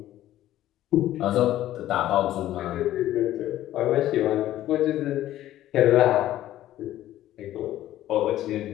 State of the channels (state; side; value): quieter; right; 13.6 dB